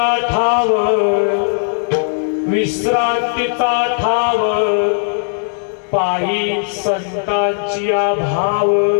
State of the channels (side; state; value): right; silent; 68 dB below the other